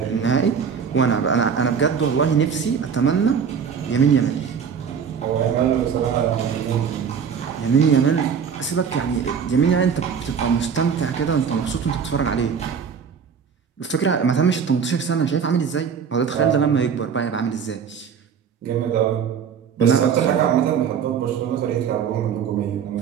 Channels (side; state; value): left; quieter; 6.9 dB